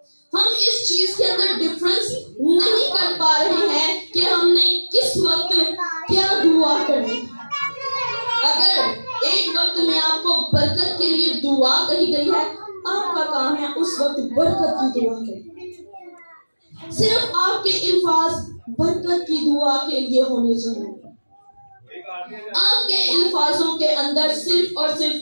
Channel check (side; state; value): both; inverted; correlation -1.00